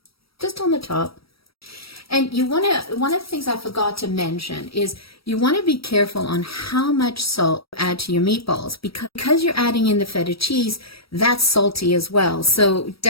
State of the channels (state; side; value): late; right; 0.75 ms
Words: Just on the top. And you want to, one of the things I forgot to mention is you want to be careful on how much salt you add to your meatballs, because you're adding in the feta cheese, that's salty as well. So